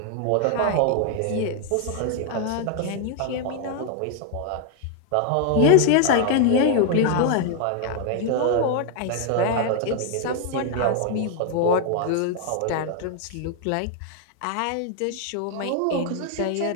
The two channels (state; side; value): different; both; correlation 0.00